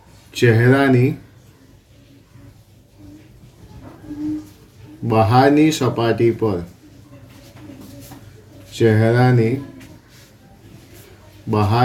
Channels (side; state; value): both; identical; correlation 1.00